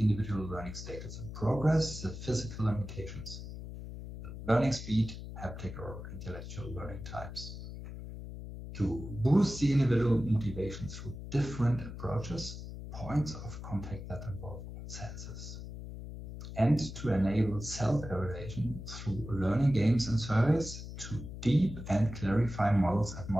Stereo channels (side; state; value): left; noise; hum, 10 dB below the sound